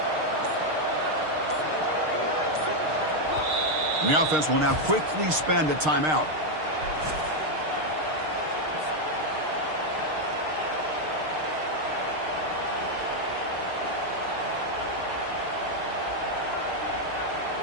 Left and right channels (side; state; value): left; late; 6.5 ms